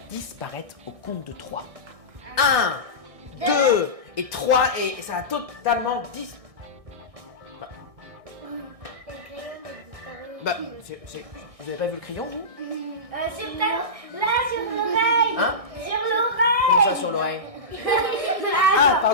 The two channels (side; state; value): left; late; 1.6 ms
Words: disparaître au compte de 3. 1, 2 et 3 et ça va totalement disparaître. Bah, vous avez pas vu le crayon, vous? Sur là, sur l'oreille. Hein? Sur l'oreille. Comme ça sur l'oreille. Ah,